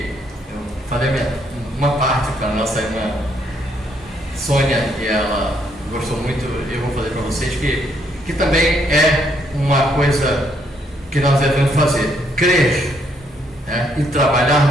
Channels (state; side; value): normal; both; correlation 0.71